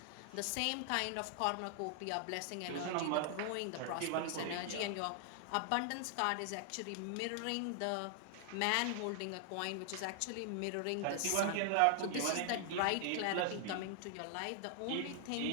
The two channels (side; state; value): both; different; correlation 0.00